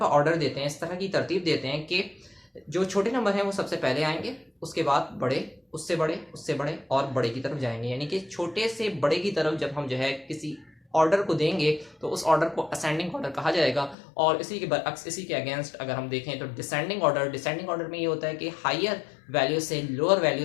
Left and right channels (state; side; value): drops out; right; at 14.0 s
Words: ऑर्डर देते हैं, इस तरह की तरतीब देते हैं कि जो छोटे नंबर हैं वो सबसे पहले आएंगे, उसके बाद बड़े, उससे बड़े, उससे बड़े और बड़े की तरफ जाएंगे। यानी कि छोटे से बड़े की तरफ जब हम जो है किसी ऑर्डर को देंगे तो उस ऑर्डर को असेंडिंग ऑर्डर कहा जाएगा। और इसी के बरअक्स, इसी के अगेंस्ट अगर हम देखें तो डिसेंडिंग ऑर्डर में ये होता है कि हायर वैल्यू से लोअर